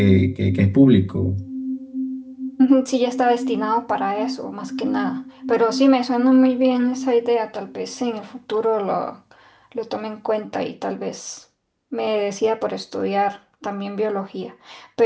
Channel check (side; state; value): both; identical; correlation 1.00